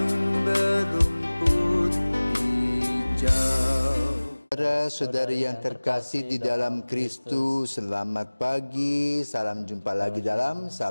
berumput hijau. Saudara-saudari yang terkasih di dalam Kristus, selamat pagi. Salam jumpa lagi dalam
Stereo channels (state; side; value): inverted; both; correlation -1.00